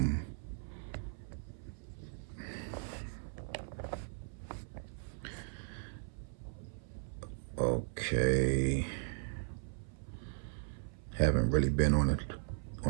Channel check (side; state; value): left; silent; 53 dB below the other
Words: Okay. Haven't really been on